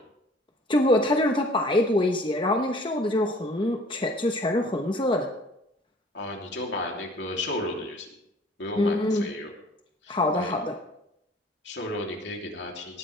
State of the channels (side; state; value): both; normal; correlation 0.52